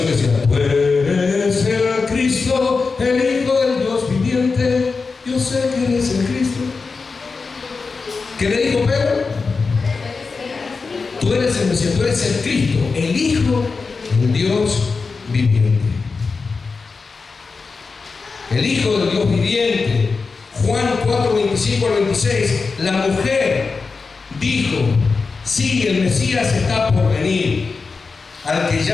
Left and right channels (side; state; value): right; quieter; 4.5 dB